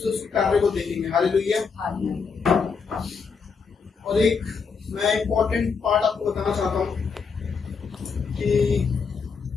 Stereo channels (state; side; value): quieter; right; 5.5 dB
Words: उसके कार्य को देखेंगे। हालेलुया। और एक मैं इम्पोर्टेंट पार्ट आपको बताना चाहता हूँ कि